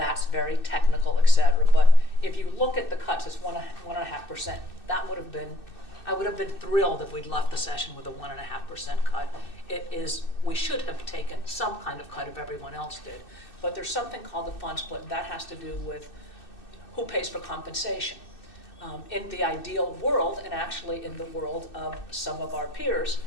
very technical, et cetera. But if you look at the cuts, it's 1.5%. That would have been, I would have been thrilled if we'd left the session with a 1.5% cut. We should have taken some kind of cut if everyone else did. But there's something called the fund split, and that has to do with who pays for compensation. In the ideal world, and actually in the world of some of our peers,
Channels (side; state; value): right; late; 2.6 ms